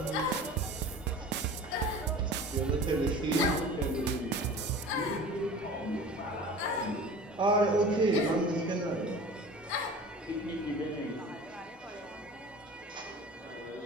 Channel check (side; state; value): both; normal; correlation 0.39